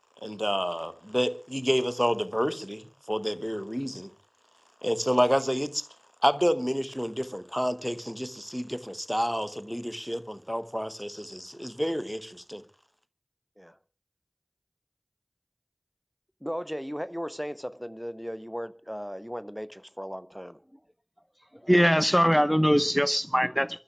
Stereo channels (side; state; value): both; identical; correlation 1.00